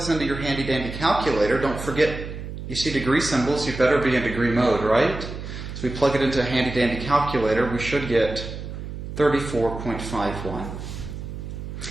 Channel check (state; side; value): noise; right; hum, 8 dB below the sound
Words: into your handy-dandy calculator, don't forget, you see degree symbols, you better be in degree mode, right? So we plug it into a handy-dandy calculator, we should get 34.51.